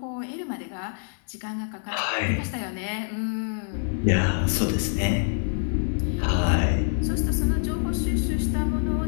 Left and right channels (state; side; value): silent; right; digital silence